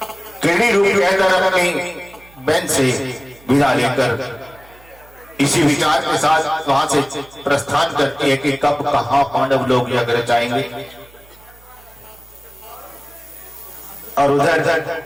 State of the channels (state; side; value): noise; right; hum, 26 dB below the sound